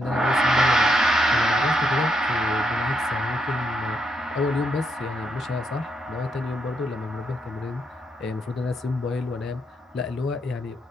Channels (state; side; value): normal; both; correlation 0.78